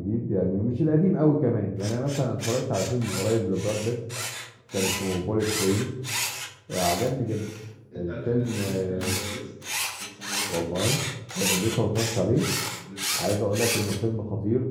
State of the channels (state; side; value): identical; both; correlation 1.00